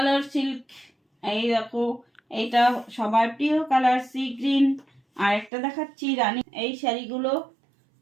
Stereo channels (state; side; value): drops out; left; at 5.5 s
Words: সিল্ক, এই দেখো এইটা সবার প্রিয় কালার সি গ্রিন। আর একটা দেখাচ্ছি রানী, এই শাড়িগুলো